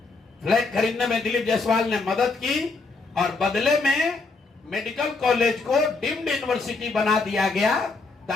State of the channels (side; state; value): right; quieter; 4.0 dB